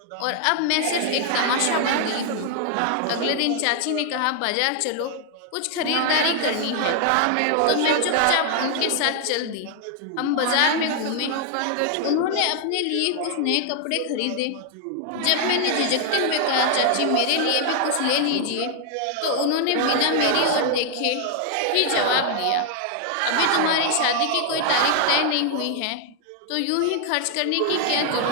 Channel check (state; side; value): different; both; correlation 0.00